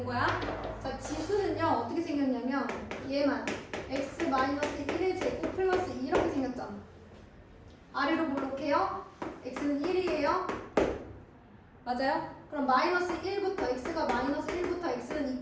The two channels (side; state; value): both; identical; correlation 1.00